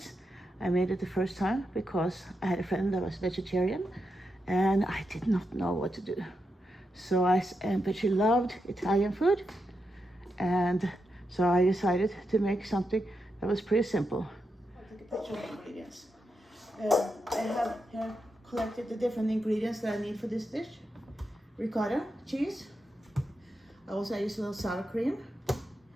I made it the first time because I had a friend that was vegetarian and I did not know what to do. But she loved Italian food, and so I decided to make something that was pretty simple. I'll take a picture of the ingredients. I have here collected the different ingredients that I need for this dish. Ricotta cheese. I also use a little sour cream,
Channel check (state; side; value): normal; both; correlation 0.86